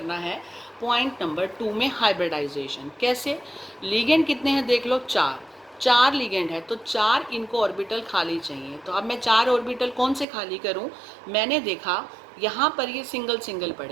है? पॉइंट नंबर 2 में हाइब्रिडाइजेशन। कैसे? लिगेंड कितने हैं देख लो, 4 लिगेंड है तो 4 इनको ऑर्बिटल खाली चाहिए। तो अब मैं 4 ऑर्बिटल कौन से खाली करूं? मैंने देखा यहाँ पर ये सिंगल सिंगल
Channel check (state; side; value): drops out; left; at 10.2 s